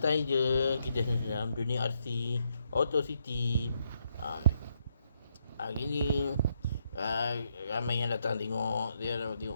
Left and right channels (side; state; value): both; inverted; correlation -0.77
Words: je. Kita dalam dunia RC Auto City. uh, Hari ni uh, ramai yang datang tengok. Dia